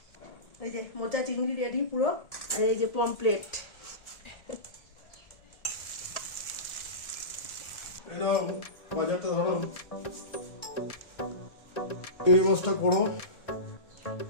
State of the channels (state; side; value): late; right; 1.7 ms